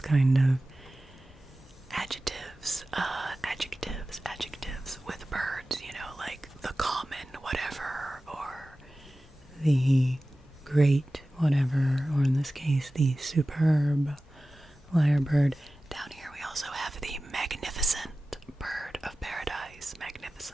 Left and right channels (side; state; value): both; normal; correlation 0.96